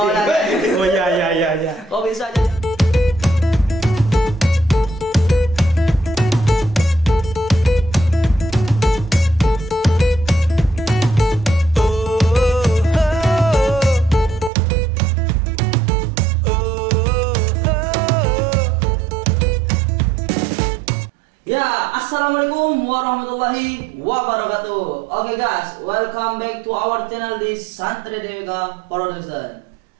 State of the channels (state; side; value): drops out; left; at 14.5 s